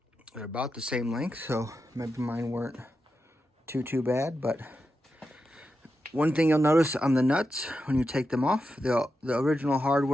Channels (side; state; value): both; normal; correlation 0.88